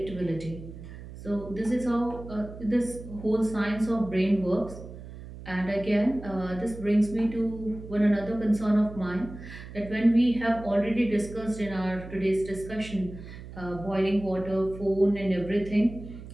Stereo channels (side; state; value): right; noise; hum, 14 dB below the sound